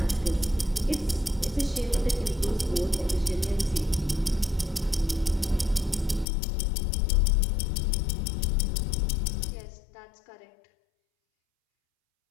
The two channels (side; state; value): right; drops out; at 6.2 s